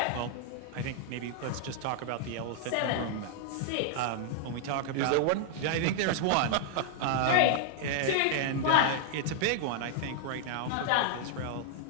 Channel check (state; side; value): different; both; correlation -0.01